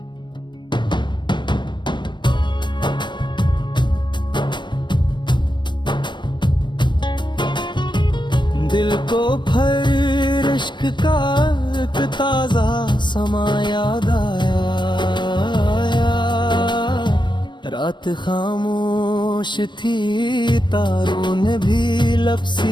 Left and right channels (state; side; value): late; right; 0.22 ms